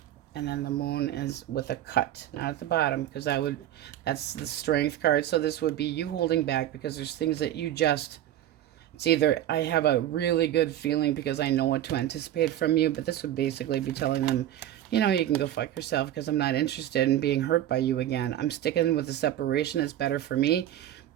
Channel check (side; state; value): left; quieter; 12.2 dB